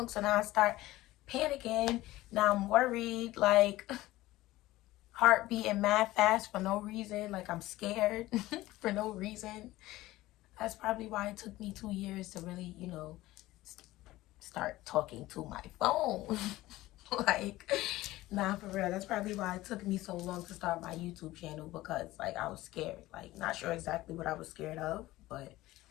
So now I start panicking. Now I'm worried, like, heart beating mad fast for no reason. Like, I'm scared for no reason. That's probably why it took me 2 years to really, start talking to my phone. Like, nah, for real. That's probably why it took me so long to start my YouTube channel, because, like, I was scared. Like, not sure exactly what I was scared of, but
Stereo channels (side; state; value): right; quieter; 17.3 dB